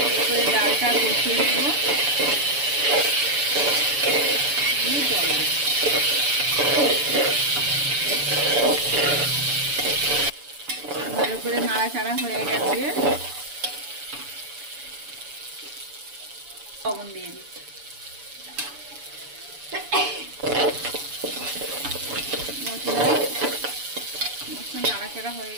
করে ডালটা কষিয়ে নেব। জল দেব। ভালো করে নাড়াচাড়া হয়ে গেছে। লবণ দিয়ে দিচ্ছি। মশলা নাড়াচাড়া হয়ে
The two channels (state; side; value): late; left; 7.0 ms